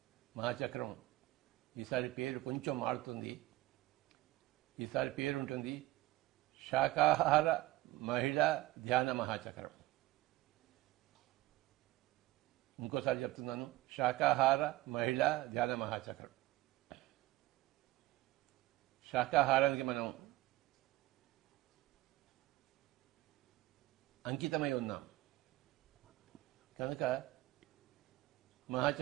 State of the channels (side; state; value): left; quieter; 17.7 dB